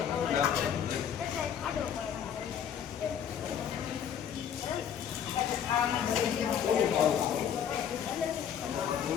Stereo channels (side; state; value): right; quieter; 8.6 dB